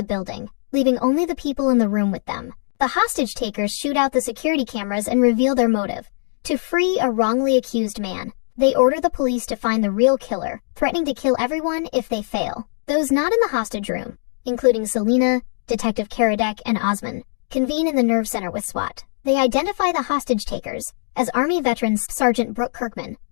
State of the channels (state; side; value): silent; right; digital silence